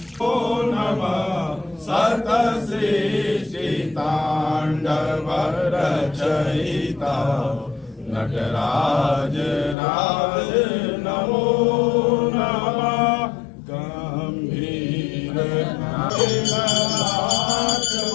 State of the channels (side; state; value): right; drops out; at 9.8 s